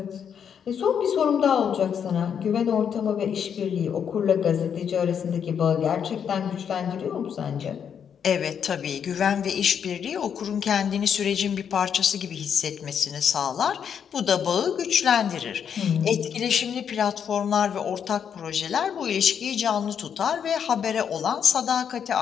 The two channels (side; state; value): right; quieter; 7.8 dB